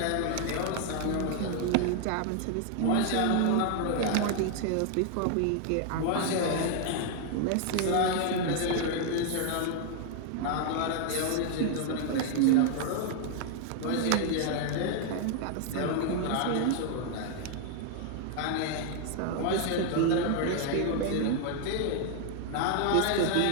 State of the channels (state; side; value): different; both; correlation 0.00